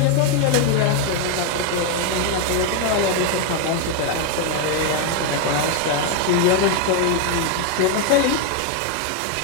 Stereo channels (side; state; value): both; different; correlation 0.01